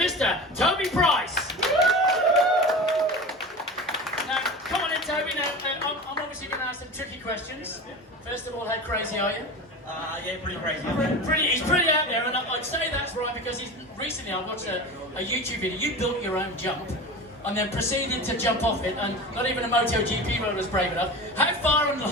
Toby Price. Come on in, Toby. Now, I'm obviously going to ask some tricky questions. First of all, how crazy are you? Yeah, pretty crazy. He's pretty out there, and I'd say that's right because recently I watched a YouTube video. You built your own jump and then proceeded to jump off it, and not even a MotoGP road was brave enough. How far and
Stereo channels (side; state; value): both; normal; correlation 0.31